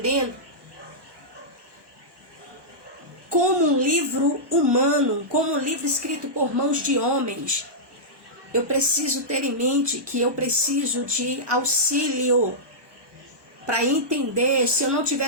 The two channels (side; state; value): left; late; 1.2 ms